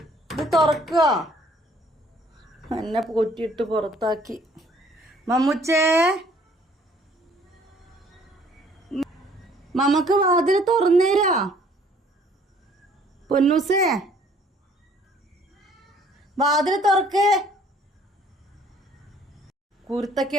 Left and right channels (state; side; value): normal; both; correlation 0.59